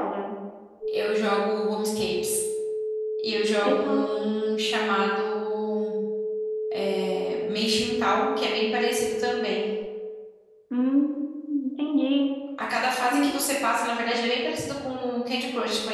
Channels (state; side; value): identical; both; correlation 1.00